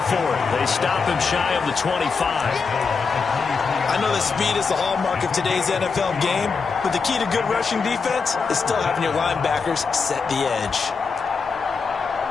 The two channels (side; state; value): right; quieter; 5.1 dB